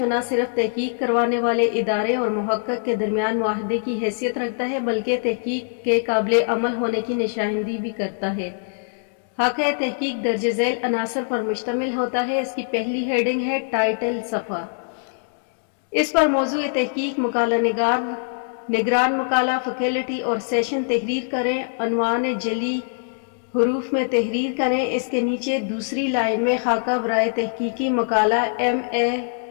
نہ صرف تحقیق کروانے والے ادارے اور محقق کے درمیان معاہدے کی حیثیت رکھتا ہے بلکہ تحقیق کے قابل عمل ہونے کی نشاندہی بھی کرتا ہے۔ خاکہ تحقیق درج ذیل عناصر پر مشتمل ہوتا ہے۔ اس کی پہلی ہیڈنگ ہے ٹائٹل صفحہ۔ اس پر موضوع تحقیق، مقالہ نگار، نگران مقالہ، فیکلٹی اور سیشن تحریر کریں، عنوان جعلی حروف میں تحریر کریں۔ اس کے نیچے دوسری لائن میں خاکہ برائے تحقیقی مقالہ MA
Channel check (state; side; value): silent; right; digital silence